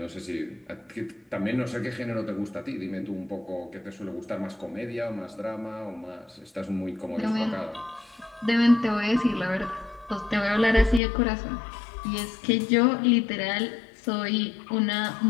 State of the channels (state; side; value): drops out; right; at 11.0 s